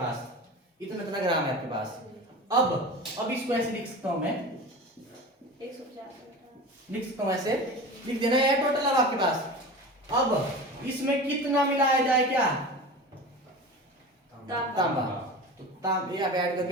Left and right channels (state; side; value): normal; both; correlation 0.32